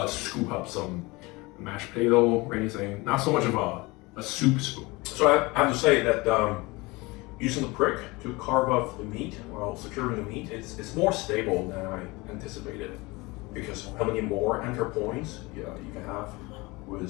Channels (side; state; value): right; quieter; 23.7 dB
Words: scoop up some mashed potato or anything. Not so much of a soup spoon. So I have to say that using the prick to carve up the meat while securing the meat, it's more stable than I anticipated, because how many more anchor points you can have